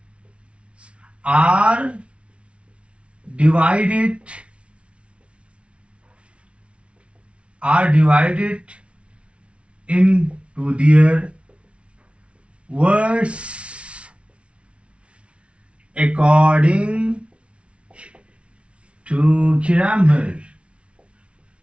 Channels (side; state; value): left; late; 0.060 ms